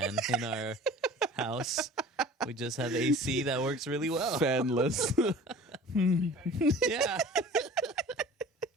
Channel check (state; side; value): normal; both; correlation 0.43